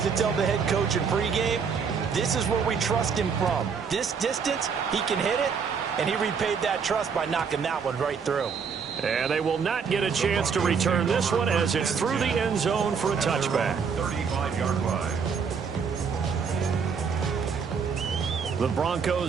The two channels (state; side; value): quieter; left; 6.1 dB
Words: to tell the head coach in pregame, this is where we trust him from. This distance, he can hit it, and he repaid that trust by knocking that one right through. And they will not get a chance to return this one as it's through the end zone for a touchback. 35-yard line. The